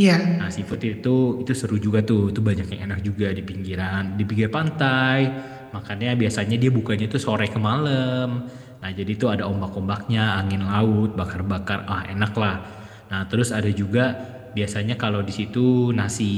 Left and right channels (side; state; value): both; identical; correlation 1.00